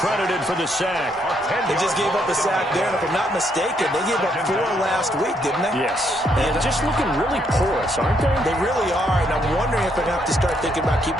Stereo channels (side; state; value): both; normal; correlation 0.73